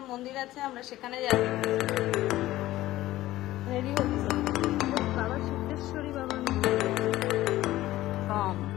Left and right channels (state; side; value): quieter; right; 15.8 dB